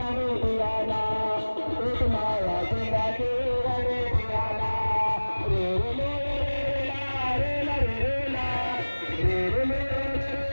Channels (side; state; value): both; inverted; correlation -1.00